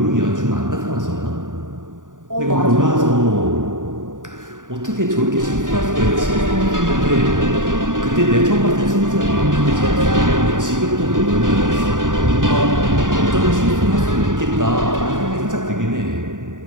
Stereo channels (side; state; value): left; late; 0.88 ms